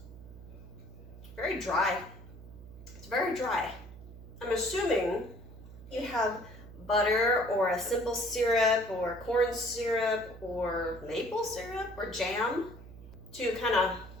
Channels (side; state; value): right; noise; hum, 16 dB below the sound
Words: very dry. It's very dry. I'm assuming you have butter or a simple syrup or corn syrup or maple syrup or jam to kind of